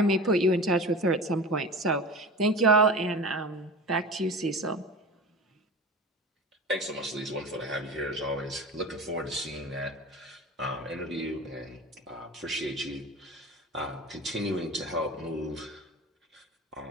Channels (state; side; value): normal; both; correlation 0.33